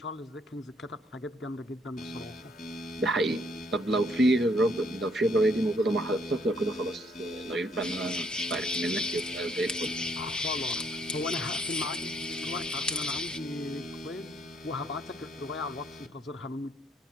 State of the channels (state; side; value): normal; both; correlation 0.68